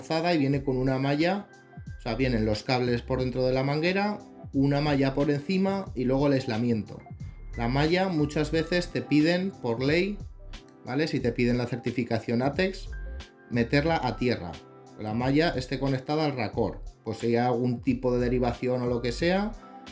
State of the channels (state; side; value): identical; both; correlation 1.00